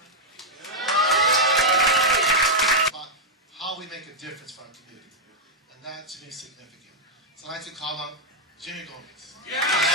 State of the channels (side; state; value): both; normal; correlation -0.04